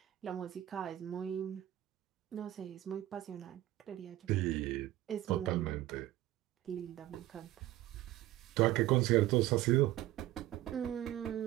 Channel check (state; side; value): quieter; left; 14.8 dB